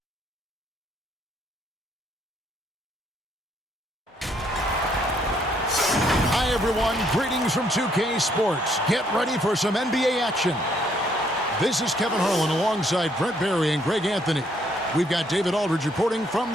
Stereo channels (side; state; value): both; normal; correlation 0.69